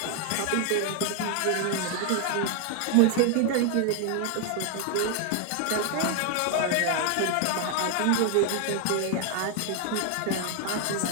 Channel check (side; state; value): both; different; correlation 0.00